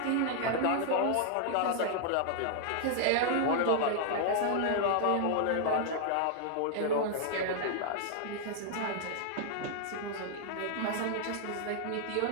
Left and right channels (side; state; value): both; different; correlation 0.00